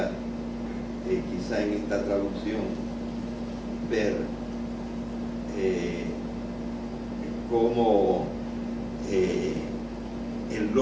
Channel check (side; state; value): both; identical; correlation 1.00